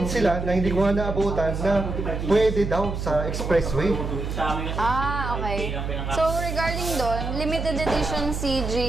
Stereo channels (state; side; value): noise; right; hum, 4 dB below the sound